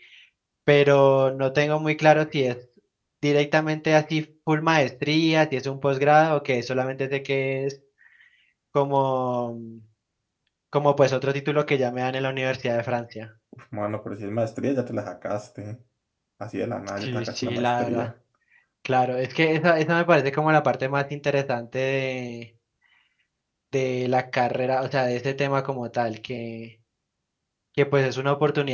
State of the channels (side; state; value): both; identical; correlation 1.00